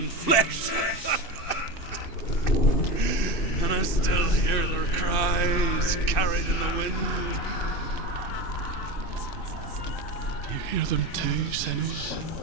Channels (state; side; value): late; right; 2.6 ms